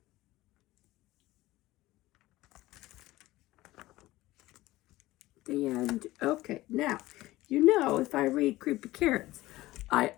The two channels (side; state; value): right; quieter; 17.6 dB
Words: The end. Okay, now, you know if I read Creepy Carrots, I